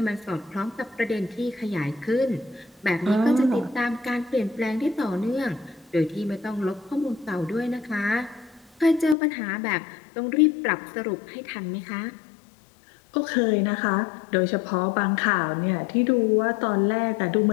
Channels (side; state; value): right; drops out; at 9.2 s